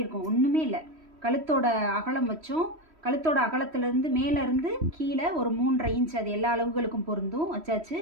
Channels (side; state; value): left; late; 3.1 ms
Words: இருக்கும். ஒன்றுமே இல்லை. கழுத்தோட அகலம் வச்சோம், கழுத்தோட அகலத்துலேருந்து மேலேருந்து கீழே ஒரு 3.5 இன்ச், அது எல்லா அளவுகளுக்கும் பொருந்தும் வச்சாச்சு.